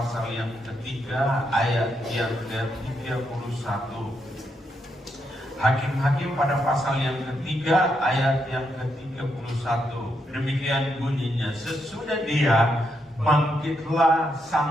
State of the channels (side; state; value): both; normal; correlation 0.80